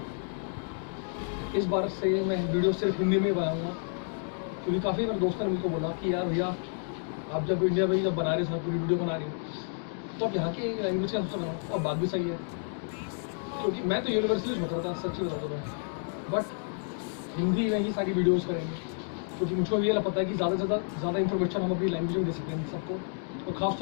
इस बार से मैं वीडियो सिर्फ हिंदी में बनाऊंगा, क्योंकि काफ़ी मेरे दोस्तों ने मुझको बोला कि यार भैया आप जब इंडिया में जब बना रहे हो पूरी वीडियो बना रही हो तो आप यहाँ की लैंग्वेज का सोचा बनाओ। और बात भी सही है, क्योंकि मैं तो यूनिवर्सिटी में बता था, सच्ची बता दूँ मैं, बट हिंदी में ही सारी वीडियोज़ करेंगे, क्योंकि मुझको ये पता है कि ज़्यादा से ज़्यादा इन्फॉर्मेशन हम अपनी लैंग्वेज में दे सकते हैं सबको। और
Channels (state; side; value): silent; right; 58 dB below the other